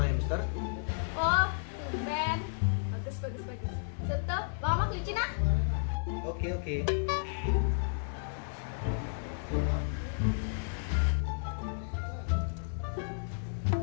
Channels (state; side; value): silent; right; 56 dB below the other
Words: hamster. Oh, tumben. Bagus. Tutup, bawa kelinci nah. Oke.